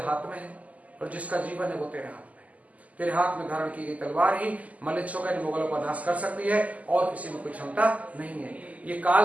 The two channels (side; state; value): left; late; 0.073 ms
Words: हाथ में है और जिसका जीवन है वो तेरे हाथ में है। तेरे हाथ में धारण की गई तलवार ही मलिच्छों का, मुगलों का नाश कर सकती है और किसी में कोई क्षमता नहीं है। ये